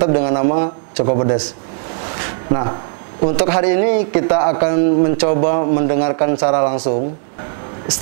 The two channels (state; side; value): silent; left; 65 dB below the other